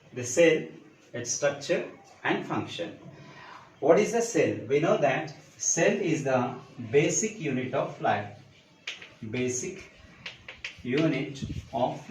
the cell, its structure and function. What is a cell? We know that cell is the basic unit of life. Basic unit of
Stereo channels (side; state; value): both; identical; correlation 1.00